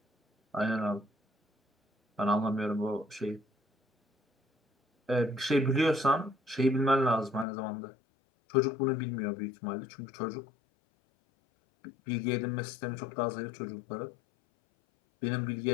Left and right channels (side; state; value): right; drops out; at 7.5 s